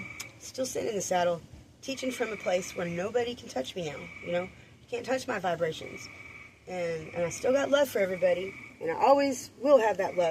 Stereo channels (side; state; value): both; identical; correlation 1.00